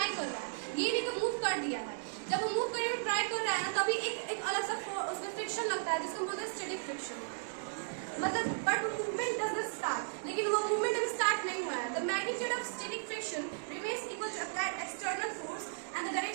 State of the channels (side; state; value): left; silent; digital silence